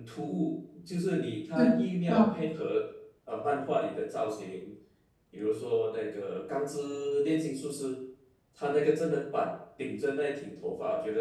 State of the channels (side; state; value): both; identical; correlation 1.00